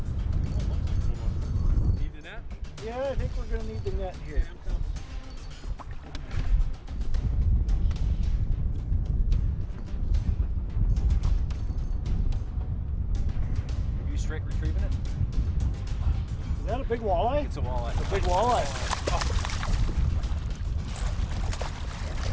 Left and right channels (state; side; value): identical; both; correlation 1.00